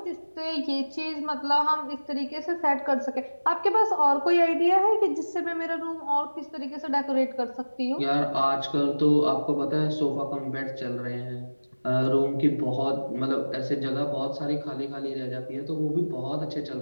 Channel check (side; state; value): both; inverted; correlation -1.00